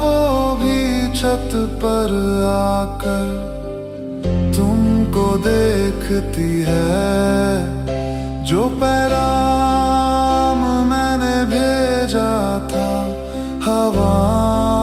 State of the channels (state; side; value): identical; both; correlation 1.00